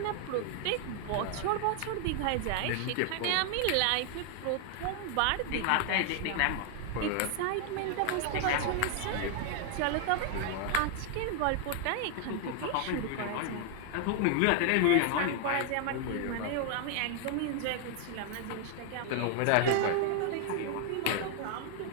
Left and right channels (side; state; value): both; different; correlation 0.00